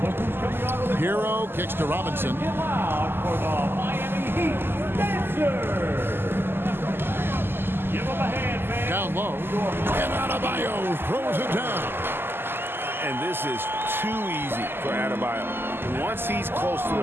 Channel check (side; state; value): left; late; 0.11 ms